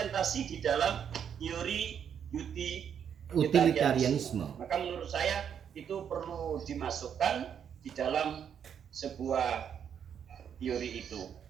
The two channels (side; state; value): left; quieter; 8.2 dB